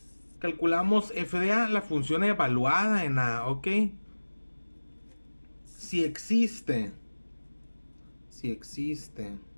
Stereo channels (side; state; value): both; inverted; correlation -1.00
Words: calculamos f de a, la función evaluada en a, ¿ok? Si existe